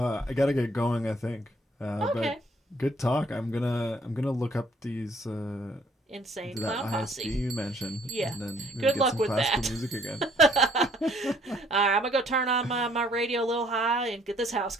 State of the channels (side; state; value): both; normal; correlation 0.62